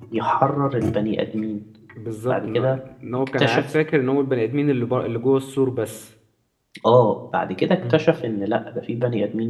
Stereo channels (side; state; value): both; identical; correlation 1.00